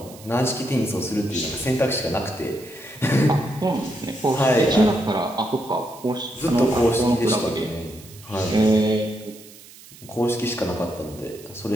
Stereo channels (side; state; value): right; noise; hiss, 20 dB below the sound